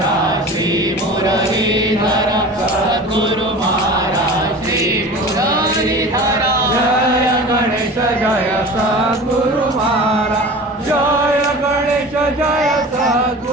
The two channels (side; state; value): both; normal; correlation 0.36